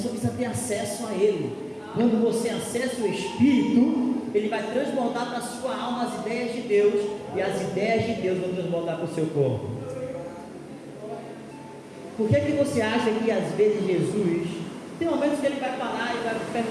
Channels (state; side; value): identical; both; correlation 1.00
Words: só precisa ter acesso a ele. Quando você acessa o espírito, ele vai transbordar para a sua alma as ideias de Deus, e as ideias de Deus vão transbordar para o seu corpo. Por que você acha que às vezes Jesus, tem momentos que ele vai parar e vai